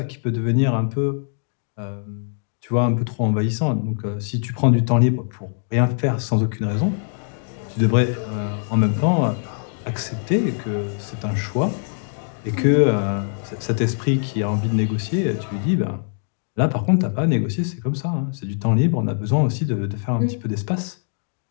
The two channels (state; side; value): silent; right; 64 dB below the other